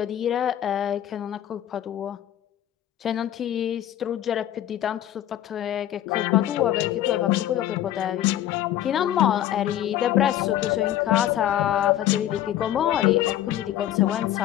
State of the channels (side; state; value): right; quieter; 12.0 dB